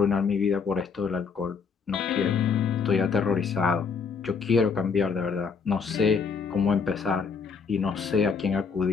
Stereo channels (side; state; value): right; quieter; 5.6 dB